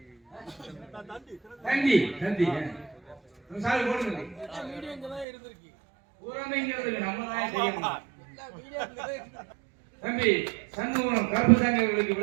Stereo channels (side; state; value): left; drops out; at 5.2 s